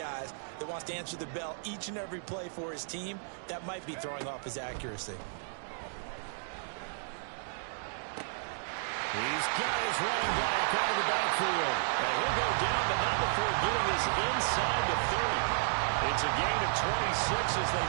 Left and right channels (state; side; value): silent; left; digital silence